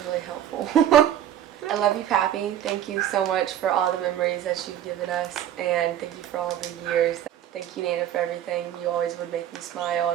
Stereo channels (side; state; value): left; quieter; 10.7 dB